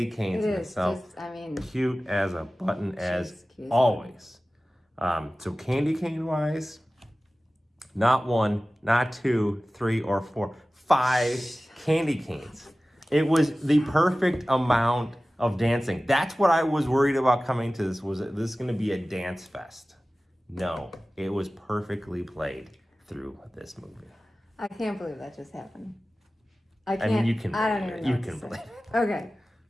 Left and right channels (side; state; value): both; normal; correlation 0.96